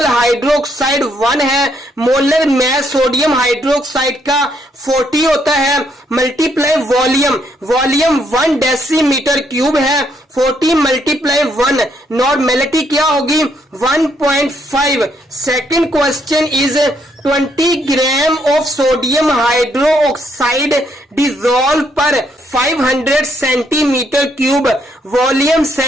हाइड्रोक्साइड 1 है। Molar मास sodium hydroxide का 40 होता है। Multiply volume, volume 1 decimetre cube है, 40 मल्टीप्लाई 1, नॉर्मेलिटी क्या होगी? 1.5। Second question is 20 gram of sodium hydroxide dissolve पर 500 centimetre cube. Volume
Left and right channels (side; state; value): both; normal; correlation 0.73